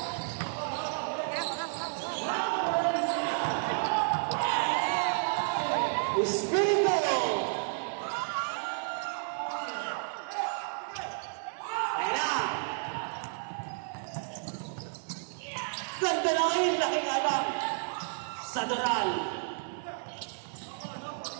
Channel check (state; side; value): silent; left; digital silence